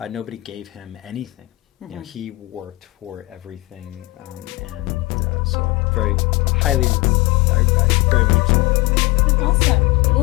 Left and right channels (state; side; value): quieter; right; 21.3 dB